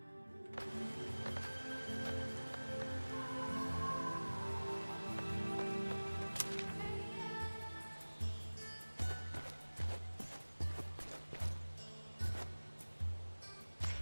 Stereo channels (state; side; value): inverted; both; correlation -1.00